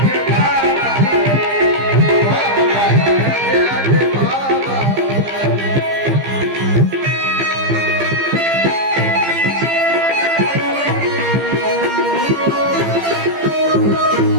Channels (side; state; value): left; late; 15 ms